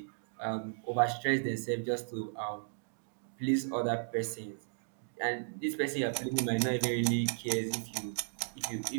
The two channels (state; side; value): silent; left; digital silence